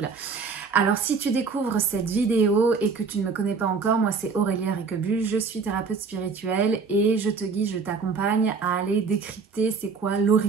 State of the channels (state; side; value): quieter; left; 5.0 dB